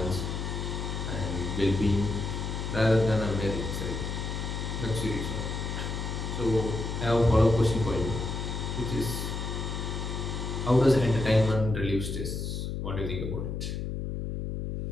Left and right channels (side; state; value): left; noise; hum, 3 dB below the sound